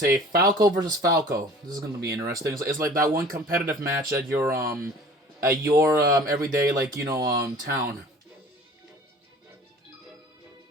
Falco versus Falco. This is gonna be interesting. It's like that one competitive match at your everyday town.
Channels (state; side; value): normal; both; correlation 0.46